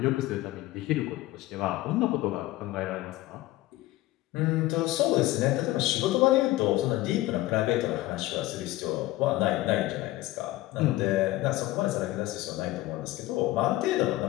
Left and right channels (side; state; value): right; quieter; 17.2 dB